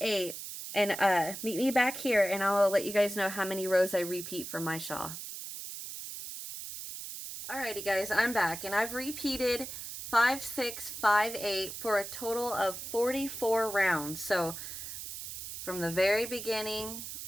and meet me back here, and I'll let you guys know how many rows I repeat for my shawl. Alrighty guys, I'm back, and I've repeated 5, 6, 5, 8 for a total of 44 rounds. So from the very beginning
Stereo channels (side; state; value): right; noise; hiss, 8 dB below the sound